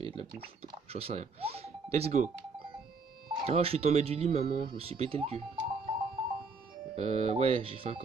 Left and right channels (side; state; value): left; quieter; 4.3 dB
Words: de la bouffe, j'en sais rien. Let's go. Oh, je suis tombé du lit, maman, je me suis pété le cul. Ouais, j'ai fait un